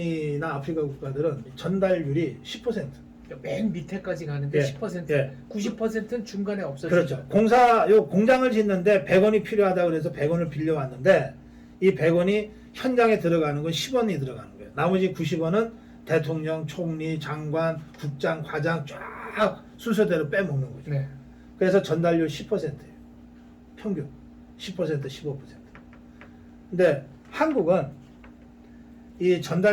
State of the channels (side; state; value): both; identical; correlation 1.00